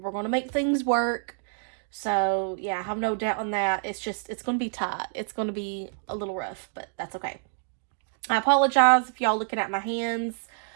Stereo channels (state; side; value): silent; left; 60 dB below the other